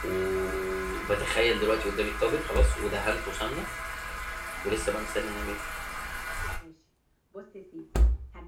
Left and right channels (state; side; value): identical; both; correlation 1.00